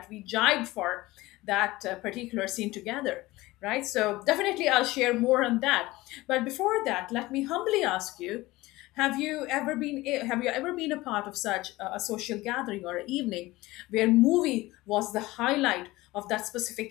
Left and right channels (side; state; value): right; quieter; 19.3 dB